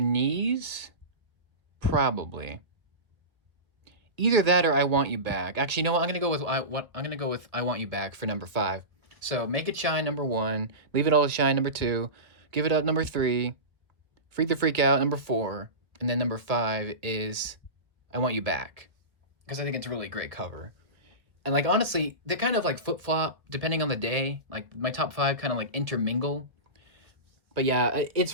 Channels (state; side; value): late; left; 1.4 ms